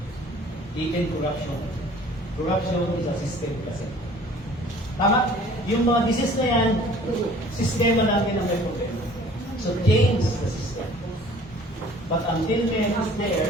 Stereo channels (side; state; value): both; normal; correlation 0.51